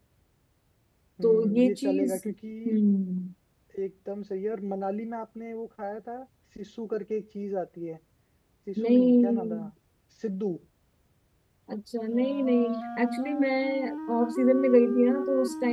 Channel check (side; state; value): both; identical; correlation 1.00